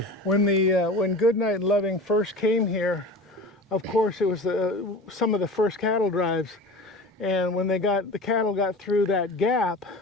When Goodnight and Loving first came here, of course it was some of the first cattle drives, and when the cattle got through that gap,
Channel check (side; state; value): both; normal; correlation 0.35